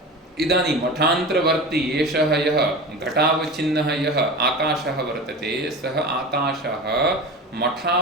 इदानीं मठान्तरवर्ती एषः यः घटावचिन्नः यः आकाशः वर्तते, सः आकाशः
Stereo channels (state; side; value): normal; both; correlation 0.30